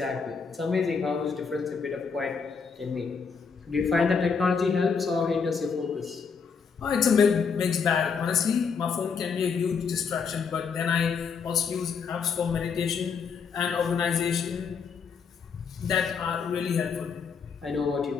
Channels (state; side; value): quieter; right; 5.8 dB